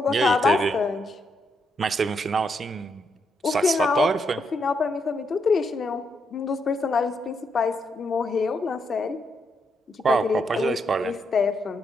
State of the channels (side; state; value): both; normal; correlation 0.79